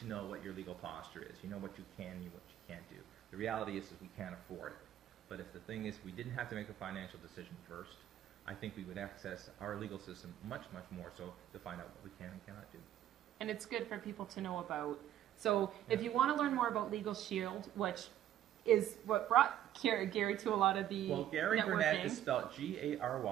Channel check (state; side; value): quieter; left; 11.7 dB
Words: know what your legal posture is. You know what you can and what you can't do. The reality is we can't afford it. But if the thing is we didn't have to make a financial decision first, I think we would access our legal system much, much more so to find out what we can and cannot do. And it's good for people to know about. So if you want to learn more about Legal Sheild, which is what brought Gary to a lot of the Gary networking. Burnett is spelled